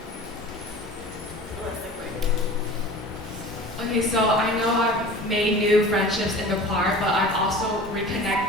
Okay, so I know I've made new friendships in the choir, but I've also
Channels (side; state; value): both; normal; correlation 0.39